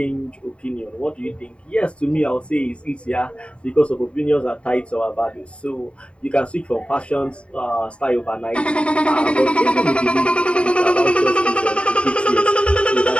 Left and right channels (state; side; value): late; right; 0.059 ms